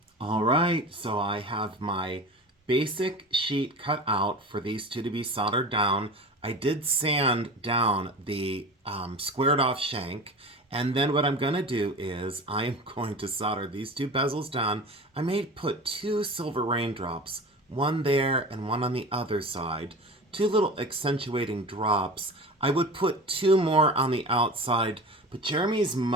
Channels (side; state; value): both; normal; correlation 0.34